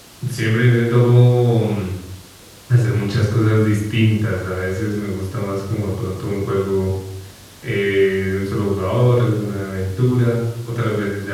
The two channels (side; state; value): both; identical; correlation 1.00